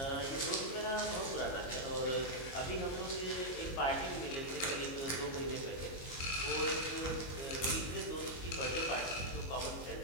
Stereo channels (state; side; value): late; right; 22 ms